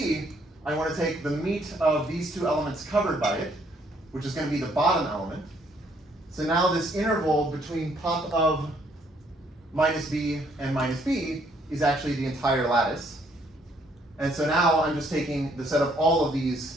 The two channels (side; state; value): both; normal; correlation 0.67